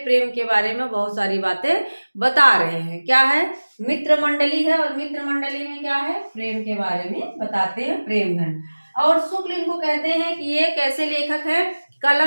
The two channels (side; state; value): both; inverted; correlation -1.00